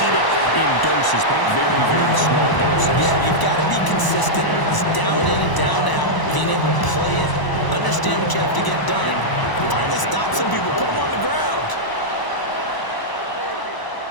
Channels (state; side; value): late; right; 1.0 ms